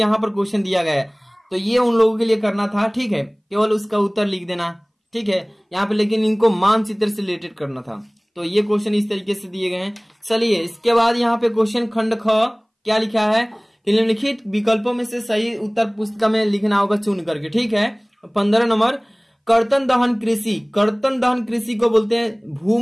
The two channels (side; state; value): both; identical; correlation 1.00